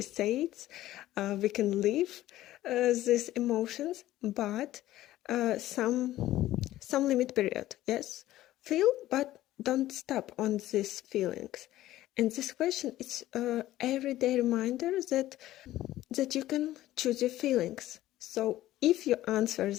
says, we can live these emotions, but some limit period. Yes, feel, but don't stop on these feelings. And this question is everyday reminder that you can choose your feelings. So if you answer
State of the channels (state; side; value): quieter; right; 14.8 dB